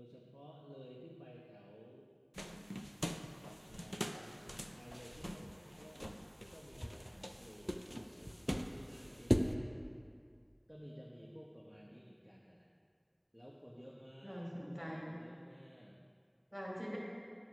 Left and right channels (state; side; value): identical; both; correlation 1.00